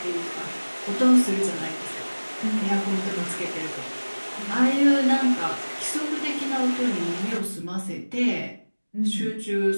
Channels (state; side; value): inverted; both; correlation -1.00